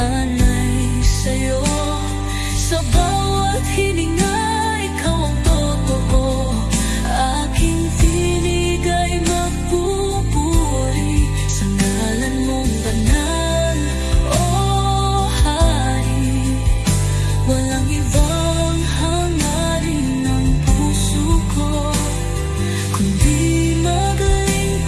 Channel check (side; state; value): both; identical; correlation 1.00